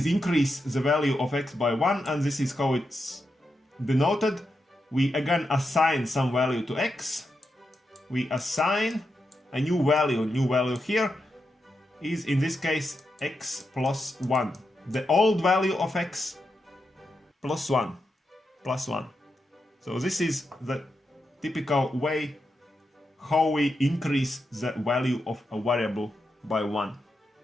increase the value of x by 1, and this is how it's denoted. We again assign some value to x. We assign a new value. New value here is in this case x plus 1. The old value of x plus 1. Plus 1. So this is the typical way how we increase the value of a variable by 1.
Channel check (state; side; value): normal; both; correlation 0.86